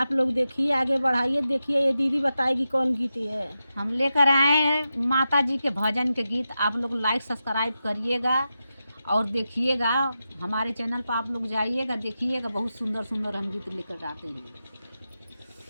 लोग देखिए, आगे बढ़ाइए। देखिए ये दीदी बताएगी कौन गीत है। हम लेकर आए हैं माता जी के भजन के गीत। आप लोग लाइक सब्सक्राइब करिएगा और देखिएगा। हमारे चैनल पर आप लोग जाइएगा, देखिएगा। बहुत सुंदर सुंदर हम गीत लेकर आते हैं।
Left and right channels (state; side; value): inverted; both; correlation -0.90